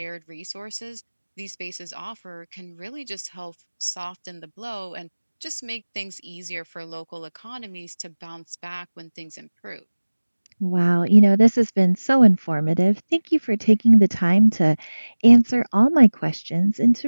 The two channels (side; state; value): both; inverted; correlation -1.00